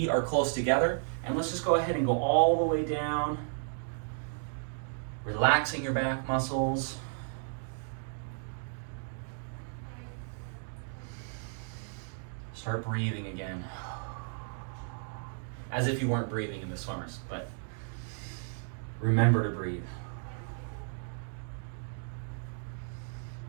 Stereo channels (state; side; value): silent; left; digital silence